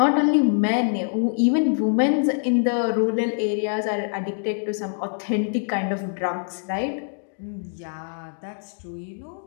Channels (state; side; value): silent; right; digital silence